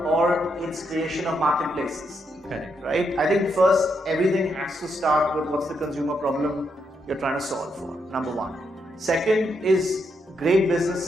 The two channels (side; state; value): both; normal; correlation 0.79